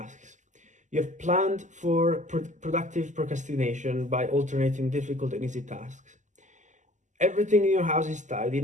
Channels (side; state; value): left; late; 0.35 ms